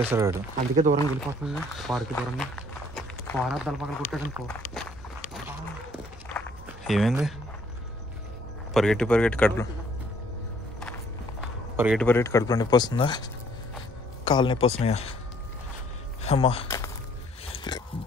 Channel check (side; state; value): both; normal; correlation 0.62